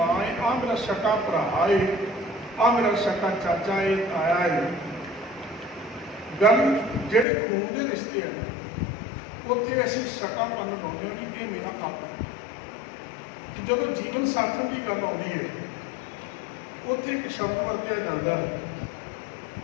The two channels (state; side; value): drops out; right; at 7.2 s